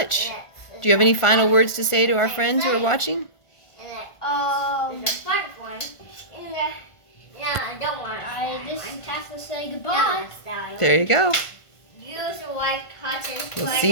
Do you have any final words to say to our friends who are watching? I just have to say goodbye. There you go. We'll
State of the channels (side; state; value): right; late; 1.5 ms